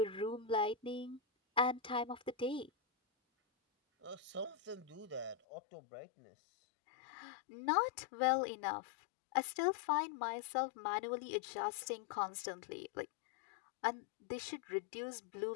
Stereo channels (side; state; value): right; drops out; at 5.4 s